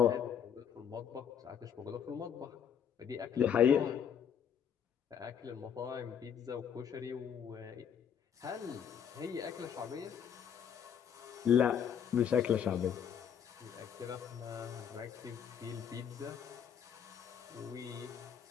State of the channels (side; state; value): right; quieter; 8.2 dB